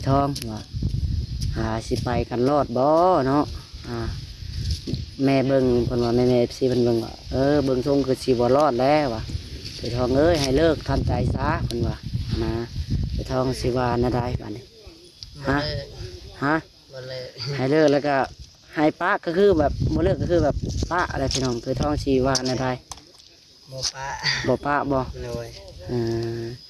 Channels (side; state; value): both; identical; correlation 1.00